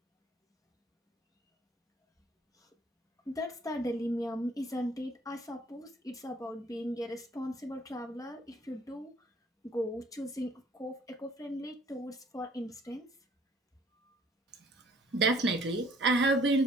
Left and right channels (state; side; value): normal; both; correlation 0.58